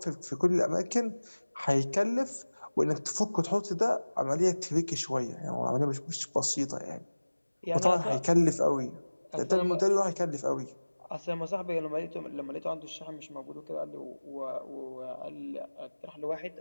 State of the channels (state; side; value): inverted; both; correlation -1.00